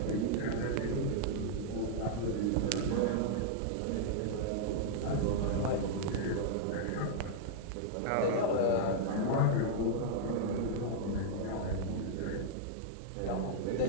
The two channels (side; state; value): both; different; correlation -0.01